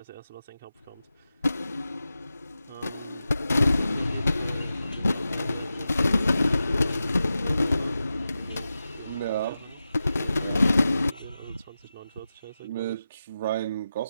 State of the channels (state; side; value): inverted; both; correlation -0.92